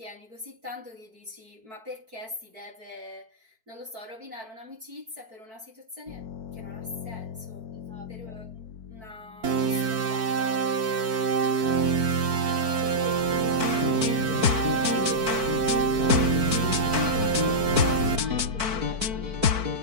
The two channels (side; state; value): left; late; 4.5 ms